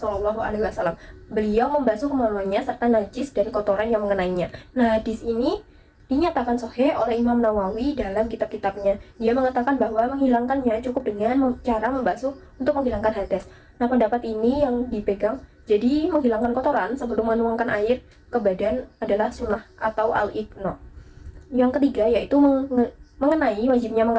Beliau membasuh kemaluannya serta najis dan kotoran yang mengenainya. Nah, hadis ini dinyatakan sahih oleh Imam Nawawi dalam kitab-kitabnya. Dia mengatakan bahwa menghilangkannya cukup dengan cara membasuh untuk menghilangkan hadas. Nah, pendapat ini yang dipegang. Jadi, menghilangkan kotoran sebelum menuangkan air ke badan adalah sunnah atau al-iqna. Yang ketiga yaitu mengenai wajibnya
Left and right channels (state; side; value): identical; both; correlation 1.00